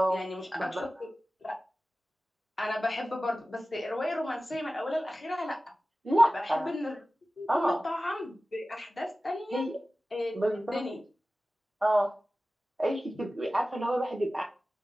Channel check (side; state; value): both; normal; correlation 0.96